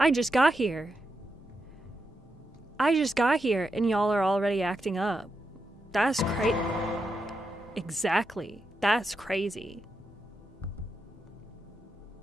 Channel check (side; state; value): both; normal; correlation 0.85